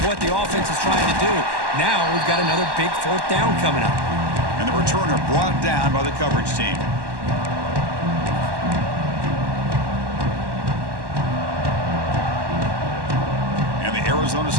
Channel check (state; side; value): late; left; 1.1 ms